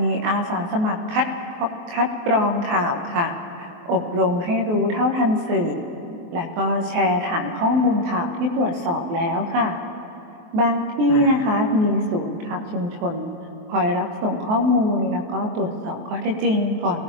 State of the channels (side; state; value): left; late; 23 ms